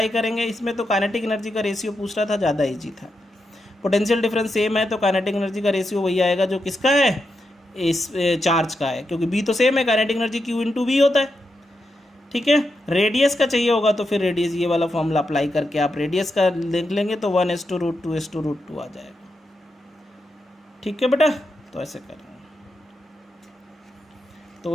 करेंगे। इसमें तो काइनेटिक एनर्जी का रेशियो पूछ रहा था, ज़्यादा ईजी था। पोटेंशियल डिफरेंस सेम है तो काइनेटिक एनर्जी का रेशियो वही आएगा जो किसका है, इस चार्ज का है, क्योंकि बी तो सेम है, काइनेटिक एनर्जी Q/V होता है। ठीक है, रेडियस का चाहिए होगा तो फिर रेडियस ये वाला फॉर्मूला अप्लाई करके आप रेडियस का देख लेंगे तो 1:√2:√2 आ जाएगा। ठीक है बेटा, तो ऐसे करेंगे।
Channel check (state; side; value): normal; both; correlation 0.86